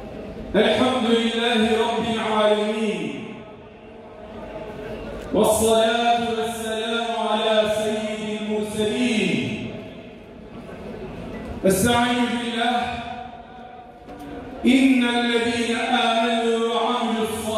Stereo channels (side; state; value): both; identical; correlation 1.00